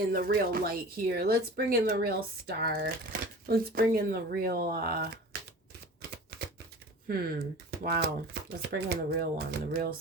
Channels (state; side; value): normal; both; correlation 0.39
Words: the real light here. Let's bring in the real star. Let's bring in the real, wow. Let's bring in the real one, the real